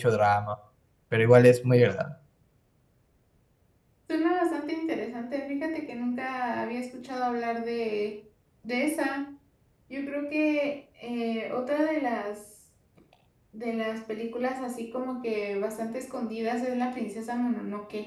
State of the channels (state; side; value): identical; both; correlation 1.00